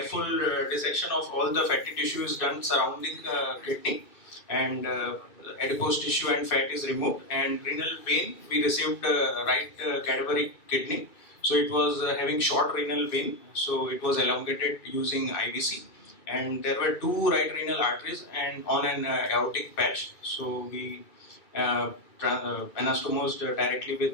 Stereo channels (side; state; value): right; late; 2.5 ms